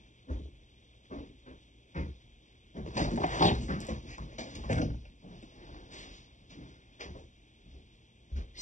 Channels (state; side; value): late; right; 0.36 ms